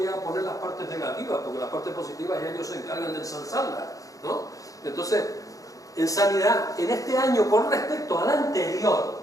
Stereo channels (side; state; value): right; late; 0.17 ms